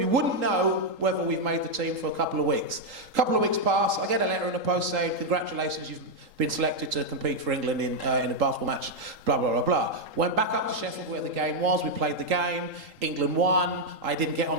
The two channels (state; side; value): late; left; 3.8 ms